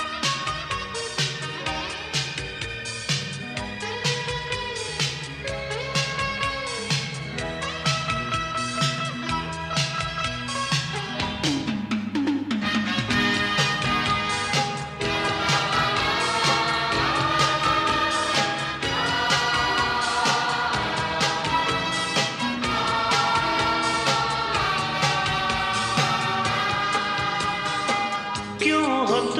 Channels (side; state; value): both; identical; correlation 1.00